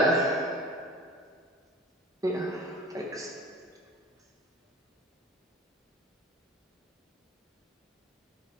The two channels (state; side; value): normal; both; correlation 0.40